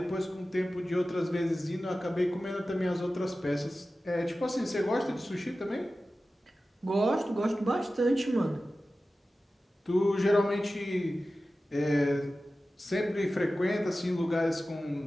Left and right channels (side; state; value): both; normal; correlation 0.95